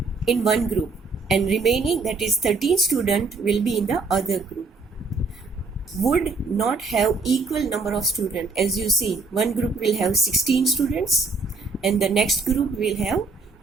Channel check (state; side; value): quieter; left; 4.0 dB